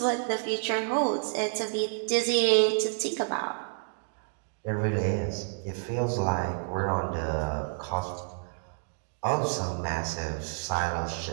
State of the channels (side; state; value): left; silent; digital silence